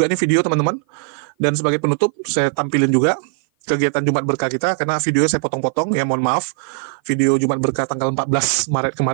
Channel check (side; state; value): left; silent; 56 dB below the other